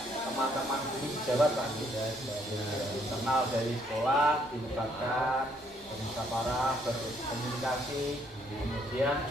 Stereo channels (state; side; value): noise; left; rumble, 28 dB below the sound